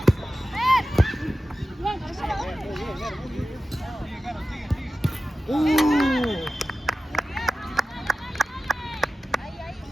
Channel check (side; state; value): both; normal; correlation 0.93